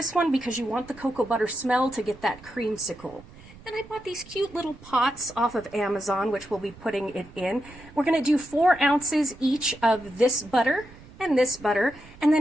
one because you want the cocoa butter smell to get that creamsicle. Then I bought these cute little pots off of Amazon, which we'll be putting it in. We're going to do 4 ounces each of this butter, and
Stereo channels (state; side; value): noise; right; rumble, 21 dB below the sound